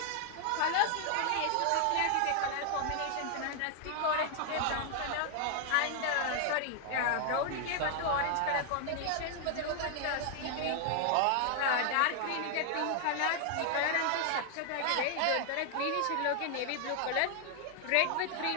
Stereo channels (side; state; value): both; different; correlation 0.00